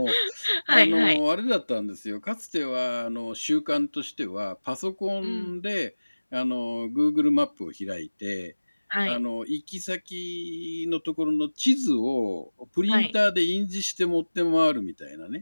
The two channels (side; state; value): both; inverted; correlation -1.00